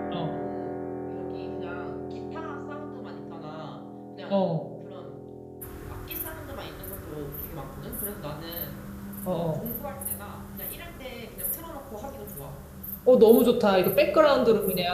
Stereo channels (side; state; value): both; identical; correlation 1.00